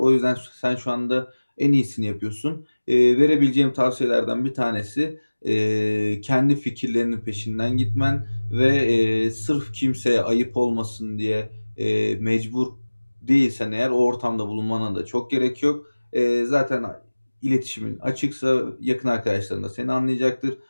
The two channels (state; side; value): inverted; both; correlation -1.00